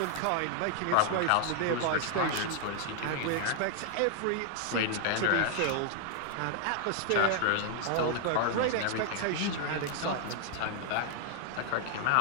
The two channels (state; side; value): different; both; correlation 0.00